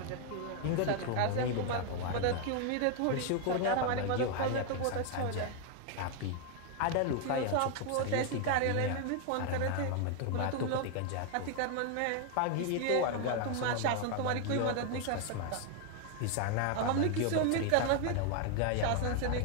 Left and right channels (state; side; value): different; both; correlation 0.01